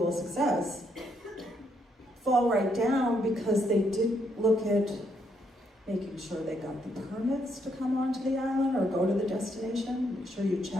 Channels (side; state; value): both; normal; correlation 0.74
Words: success fall right down because they didn't look at making sure they got the permits to come onto the island or go to the destination. Make sure you